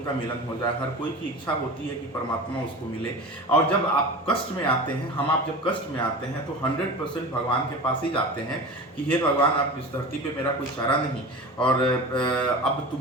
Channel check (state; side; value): normal; both; correlation 0.33